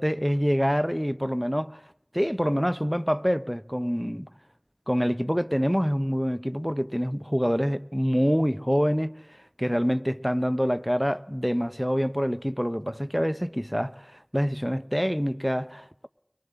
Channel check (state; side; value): identical; both; correlation 1.00